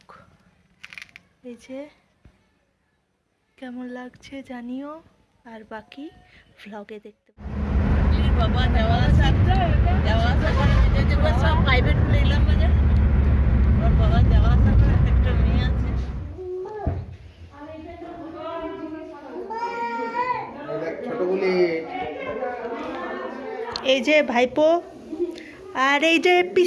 এই যে কেমন লাগছে জানিও, আর বাকি ভ্লগে দেখতে এই যে ভাইপো আর এই যে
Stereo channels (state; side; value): identical; both; correlation 1.00